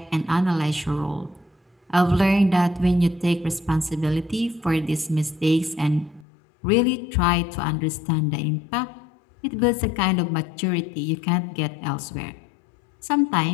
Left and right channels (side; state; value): right; drops out; at 6.2 s